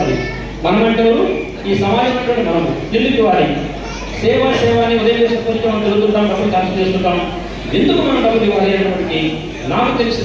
మనం అంటే ఈ సమాజం అంటే మనం ఎందుకు ఇవ్వాలి? సేవ అని ఉదయం చేసుకుంటూ మనం తిరుగుతుంటాం, డబ్బులు ఖర్చు చేస్తుంటాం. ఎందుకు మనం డబ్బులు ఇవ్వాలి అనేప్పటికీ నాకు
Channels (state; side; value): identical; both; correlation 1.00